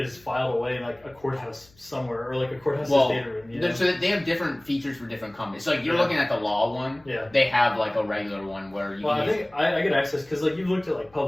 filed away in like a courthouse somewhere or like a courthouse's data room. You know? So they have different features for different companies. So like you're looking at the law one. Yeah. They have like a regular one where you. Well, I think I get access because like you've looked at like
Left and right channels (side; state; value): left; noise; hum, 29 dB below the sound